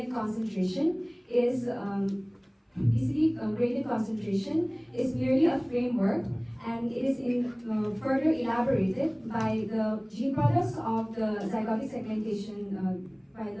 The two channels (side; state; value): both; identical; correlation 1.00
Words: concentration is merely a framework, and it is further elaborated by the gene products of the zygotic segmentation